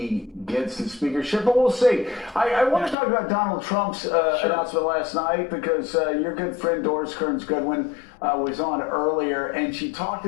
gets the speakership, but we'll see. I want to talk about Donald Trump's announcement last night, because your good friend Doris Kearns Goodwin was on earlier, and she talked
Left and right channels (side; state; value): right; drops out; at 3.0 s